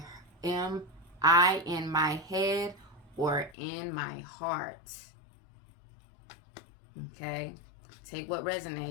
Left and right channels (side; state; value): right; drops out; at 3.6 s